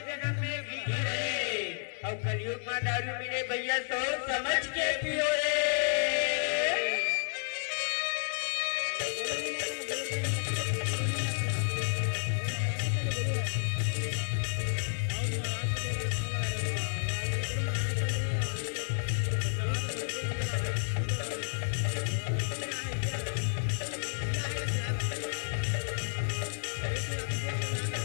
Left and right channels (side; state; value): right; silent; digital silence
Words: जन्म में घी रे और कलयुग में दारू मिले भैया सोच समझ के पियो रे